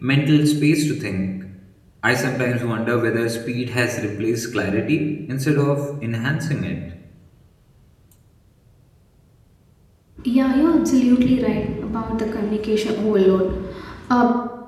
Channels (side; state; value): both; identical; correlation 1.00